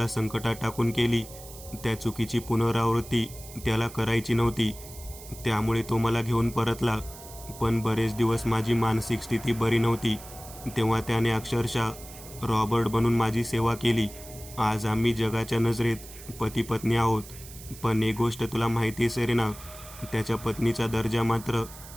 संकटात टाकून केली त्या चुकीची पुनरावृत्ती त्याला करायची नव्हती. त्यामुळे तो मला घेऊन परतला. पण बरेच दिवस माझी मानसिक स्थिती बरी नव्हती. तेव्हा त्याने अक्षरशः रॉबर्ट बनून माझी सेवा केली. आज आम्ही जगाच्या नजरेत पती पत्नी आहोत. पण एक गोष्ट तुला माहिती आहे सेरेना, त्याच्या पत्नीचा दर्जा मात्र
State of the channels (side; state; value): right; noise; hiss, 16 dB below the sound